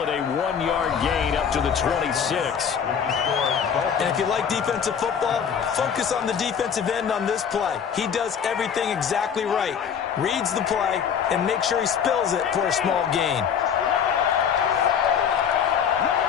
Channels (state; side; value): quieter; right; 7.6 dB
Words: it a 1-yard gain up to the 26. And if you like defensive football, focus on the defensive end on this play. He does everything exactly right. Reads the play and makes sure he spills it for a small gain.